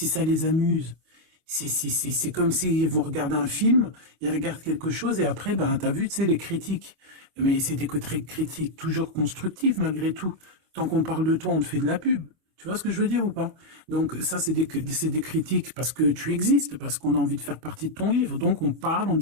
ça les amuse. C'est comme si vous regardez un film, ils regardent quelque chose et après, ben, t'as vu, tu sais, les critiques. Mais c'est des critiques toujours constructives, malgré tout. Tant qu'on parle de toi, on te fait de la pub. Tu vois ce que je veux dire ou pas? Donc ça, c'est des critiques parce que tu existes, parce qu'on a envie de faire partie de ton livre. Donc on parle, on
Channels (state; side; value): late; left; 25 ms